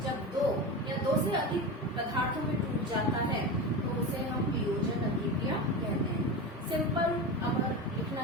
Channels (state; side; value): normal; both; correlation 0.24